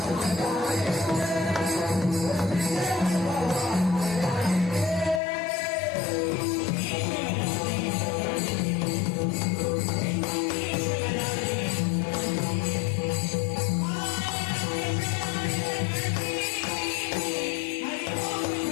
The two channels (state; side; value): drops out; right; at 5.2 s